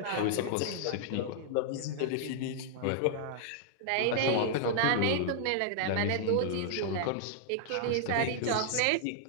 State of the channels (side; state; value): both; different; correlation -0.01